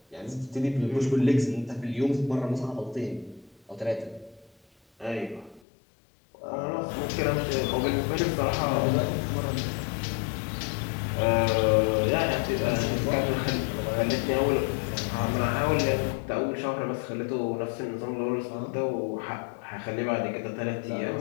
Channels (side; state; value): right; drops out; at 5.6 s